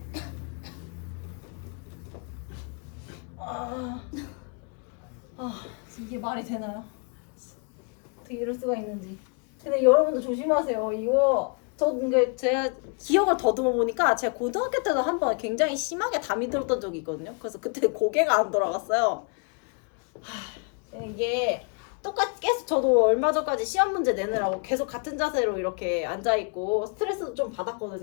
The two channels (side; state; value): right; quieter; 37.8 dB